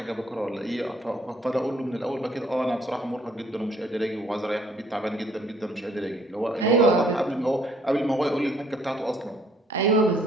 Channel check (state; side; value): normal; both; correlation 0.64